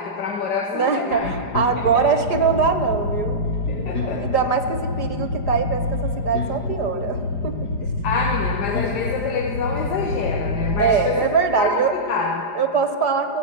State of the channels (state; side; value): late; right; 4.9 ms